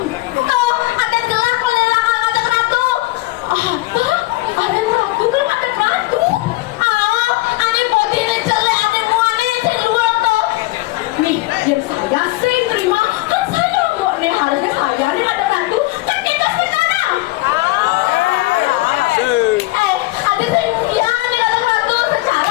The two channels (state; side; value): quieter; right; 20.2 dB